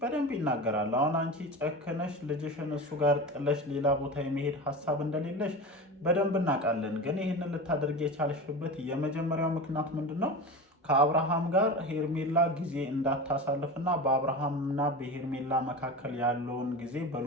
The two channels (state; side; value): normal; both; correlation 0.28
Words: በደንብ ይናገራል። አሁን አንቺ ጨክነሽ ልጅሽን እሱ ጋር ጥለሽ ሌላ ቦታ የመሄድ ሀሳብ እንደሌለሽ በደንብ እናውቃለን። ግን ይህንን ልታደርግ የቻልሽበት የመጀመሪያው ምክንያት ምንድን ነው? ከአብርሃም ጋር ሄርሜላ ጊዜ እንዳታሳልፍና በአብርሃምና በሄርሜላ መካከል ያለውን ጊዜ